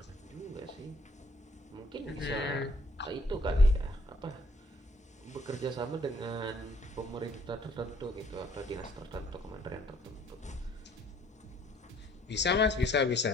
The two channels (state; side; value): normal; both; correlation 0.62